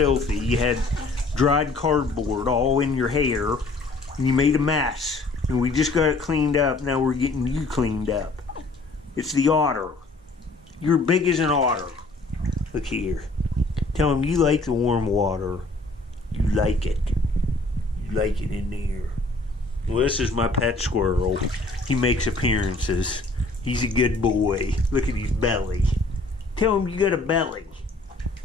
You had dried cardboard all in your hair, and you made a mess. And we just got it cleaned up. Now we're getting you cleaned up. It's the otter. You're big as an otter. Look here. Tell him you like the warm water. You like it. You like it in there. Well, this is my pet squirrel. He makes appearances. He's a good boy. Look at his belly. Tell him you got a belly.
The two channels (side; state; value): right; quieter; 3.2 dB